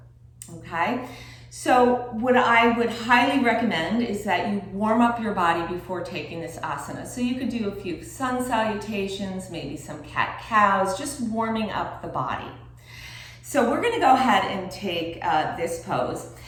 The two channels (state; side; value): identical; both; correlation 1.00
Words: okay? So what I would highly recommend is that you warm up your body before taking this asana. So you could do a few sun salutations, maybe some cat-cows, just warming up the body. So we're going to go ahead and take this pose,